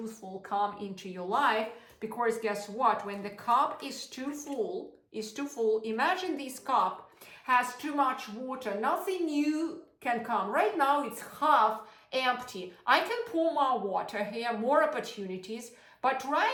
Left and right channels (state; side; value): identical; both; correlation 1.00